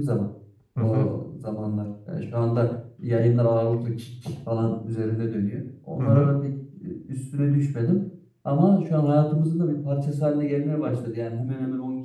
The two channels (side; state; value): both; identical; correlation 1.00